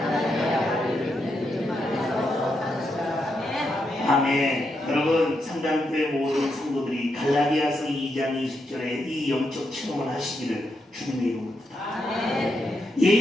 아멘. 여러분 상담교회 모든 성도들이 갈라디아서 2장 20절에 이 영적 체험을 하시기를 주님의 이름으로 부탁합니다.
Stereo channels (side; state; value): both; normal; correlation 0.83